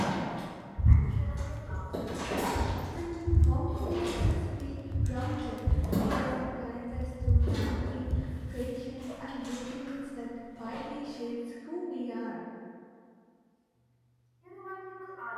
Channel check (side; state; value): both; identical; correlation 1.00